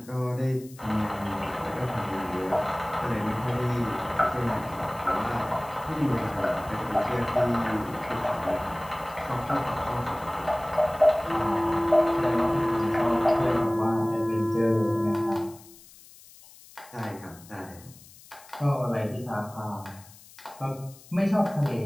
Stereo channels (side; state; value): left; noise; hiss, 22 dB below the sound